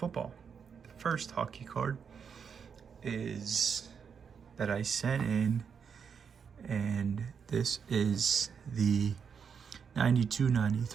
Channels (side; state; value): left; quieter; 6.7 dB